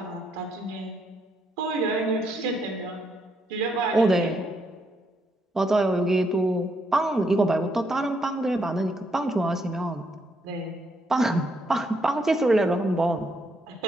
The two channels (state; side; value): normal; both; correlation 0.76